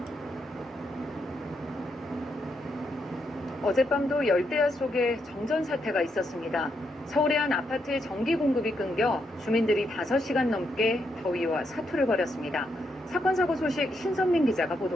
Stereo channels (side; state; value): both; normal; correlation 0.79